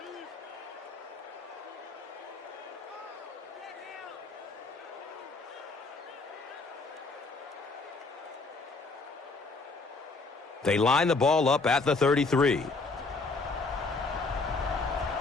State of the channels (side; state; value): right; quieter; 3.7 dB